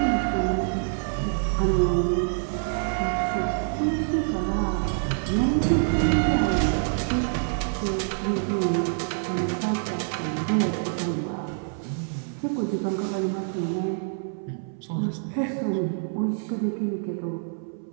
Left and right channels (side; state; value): left; silent; 61 dB below the other